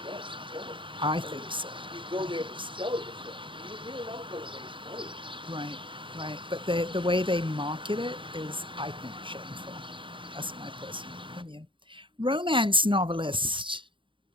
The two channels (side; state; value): left; late; 0.24 ms